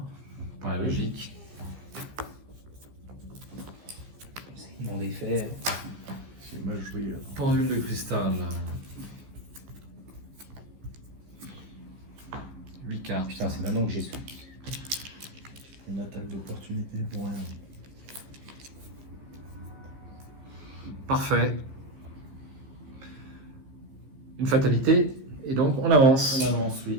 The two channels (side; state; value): left; late; 15 ms